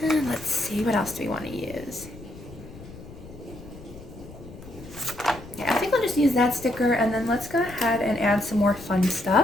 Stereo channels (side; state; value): left; noise; rumble, 16 dB below the sound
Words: And let's see, what else do we want to use? Yeah, I think I'll just use that sticker, and then let's go ahead and add some more fun